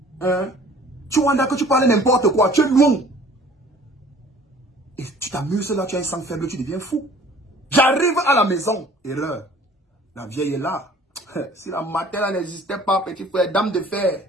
Hein? Tu vois que tu parles n'importe quoi, tu es loin. Et tu t'amuses là, tu as un sang faible, tu deviens fou. J'arrive à la maison, erreur. La vieille est là. Si la matière n'existait pas, petit frère, dame de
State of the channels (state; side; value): normal; both; correlation 0.51